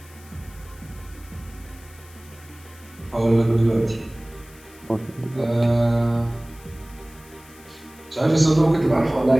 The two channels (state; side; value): noise; left; hiss, 23 dB below the sound